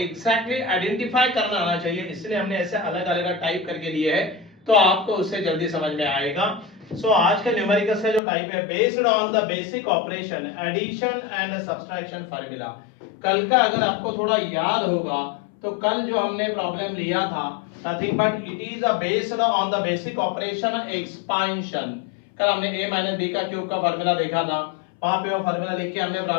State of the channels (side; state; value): right; drops out; at 8.2 s